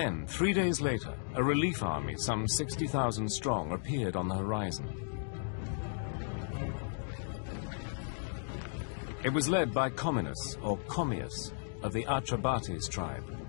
3 days later, a relief army, some 60,000 strong, appeared on the horizon. It was led by Comminus, or Commius, of the Atrebates tribe,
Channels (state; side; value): silent; right; digital silence